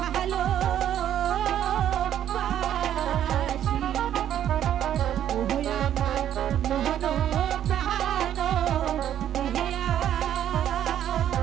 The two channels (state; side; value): quieter; left; 10.6 dB